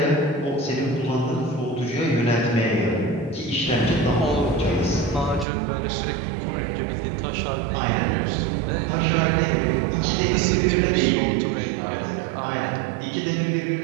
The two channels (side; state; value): left; drops out; at 5.5 s